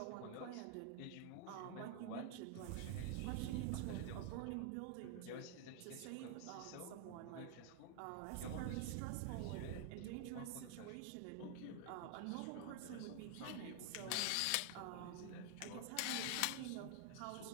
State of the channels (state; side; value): different; both; correlation 0.00